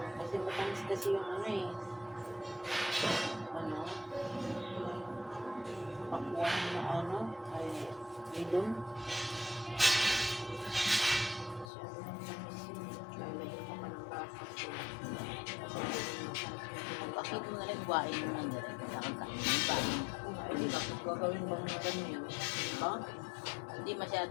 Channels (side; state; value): right; drops out; at 11.7 s